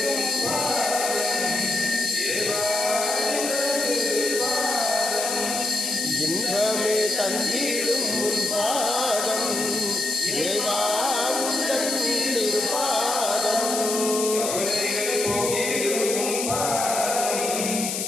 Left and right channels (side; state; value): left; noise; hiss, 2 dB below the sound